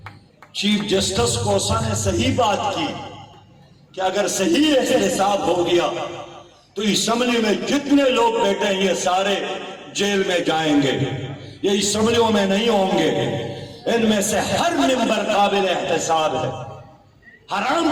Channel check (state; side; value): identical; both; correlation 1.00